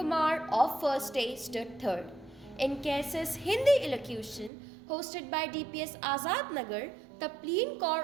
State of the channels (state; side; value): drops out; left; at 4.5 s